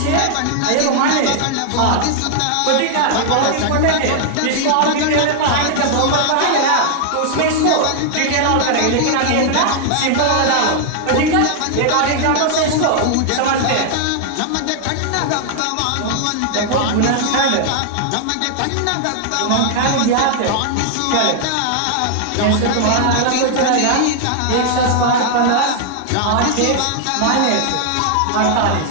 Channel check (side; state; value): both; different; correlation 0.00